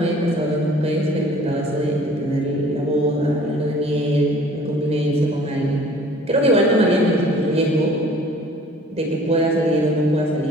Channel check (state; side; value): normal; both; correlation 0.51